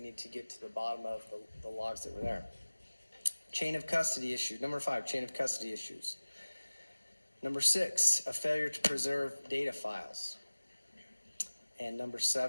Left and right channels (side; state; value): both; inverted; correlation -1.00